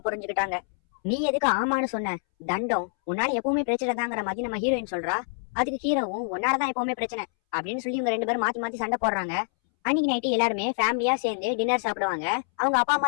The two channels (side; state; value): right; silent; 61 dB below the other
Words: புரிஞ்சுக்கிட்டாங்க, நீ எதுக்கு ஆமான்னு சொன்ன, தண்டம் உன்னால எப்பவுமே பிரச்சனை தாங்கிற மாதிரி நம்ம ஹீரோயின் சொல்றா. அதுக்கு ஹீரோவும் உன்னாலதான் எப்பவுமே பிரச்சனை அப்படின்னு சொல்லி இவங்க ரெண்டு பேரும் மாத்தி மாத்தி சண்டை போடுறாங்க. அன்னைக்கு நைட்டு எல்லாருமே ஃபேமிலியா சேர்ந்து டின்னர் சாப்பிடுவாங்க. அவங்க அப்பா